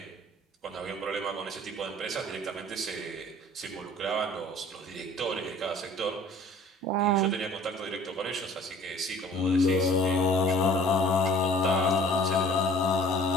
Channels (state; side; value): normal; both; correlation 0.51